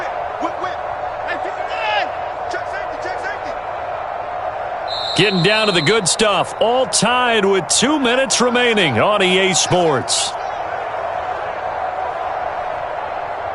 Getting down to the good stuff. All tied with 2 minutes remaining on EA Sports.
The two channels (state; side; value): identical; both; correlation 1.00